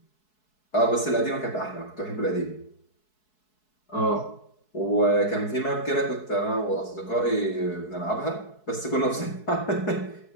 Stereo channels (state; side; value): late; right; 4.7 ms